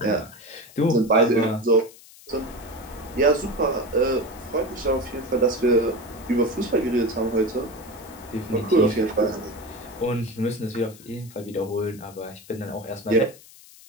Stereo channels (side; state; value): left; noise; hiss, 21 dB below the sound